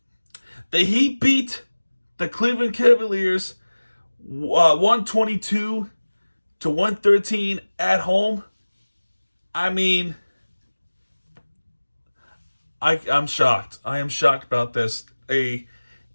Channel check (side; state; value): both; inverted; correlation -1.00